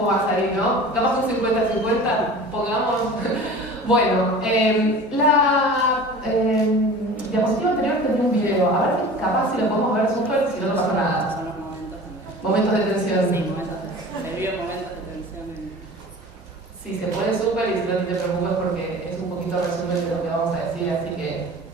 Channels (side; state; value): both; normal; correlation 0.39